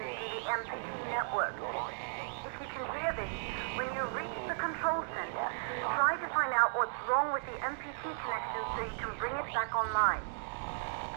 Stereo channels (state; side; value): silent; left; digital silence